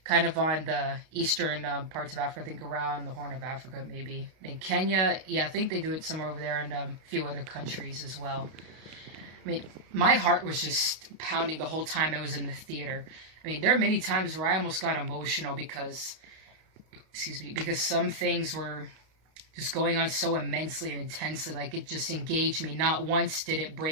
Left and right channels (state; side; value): late; left; 32 ms